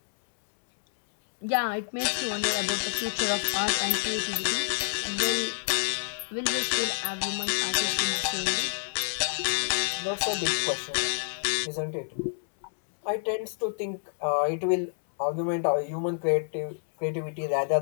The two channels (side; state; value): right; silent; 59 dB below the other